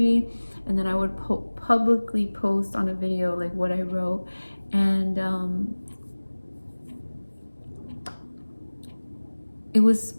and then I would publicly post on a video like what I wrote. And it was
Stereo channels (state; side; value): inverted; both; correlation -1.00